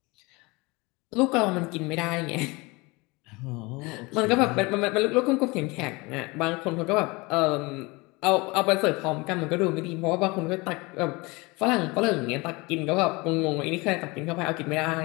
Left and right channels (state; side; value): quieter; right; 24.9 dB